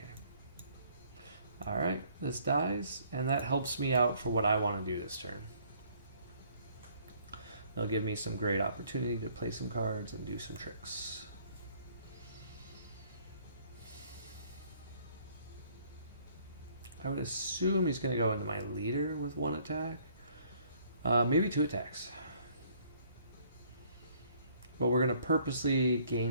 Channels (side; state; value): both; inverted; correlation -0.62